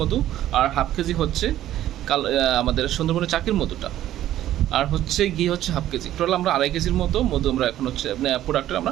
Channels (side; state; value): left; quieter; 12.9 dB